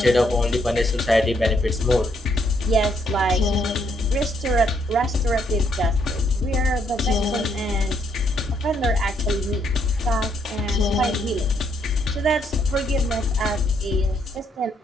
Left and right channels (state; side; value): normal; both; correlation 0.72